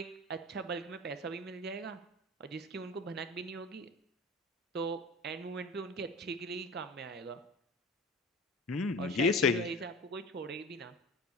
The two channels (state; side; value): normal; both; correlation 0.36